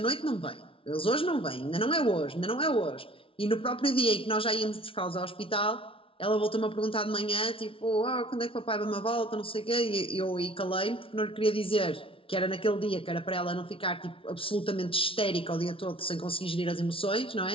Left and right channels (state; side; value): late; right; 0.26 ms